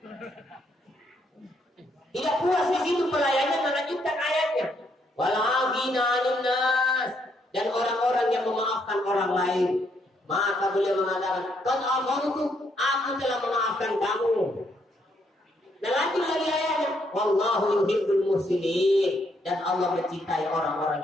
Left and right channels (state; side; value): normal; both; correlation 0.73